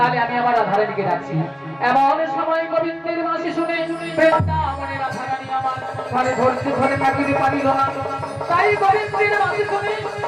আমি আবার রাধারানীকে ডাকছি। এমন সময় গোবিন্দের বাঁশি শুনে বৃন্দাবনে রাধারানী আমার ঘরে ধরছে, ঘরে থাকিতে পারিল না। তাই গোবিন্দের বাঁশি শুনে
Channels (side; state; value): both; identical; correlation 1.00